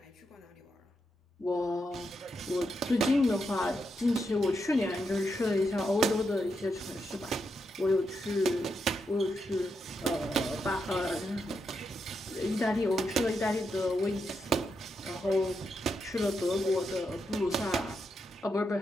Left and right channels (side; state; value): both; normal; correlation 0.83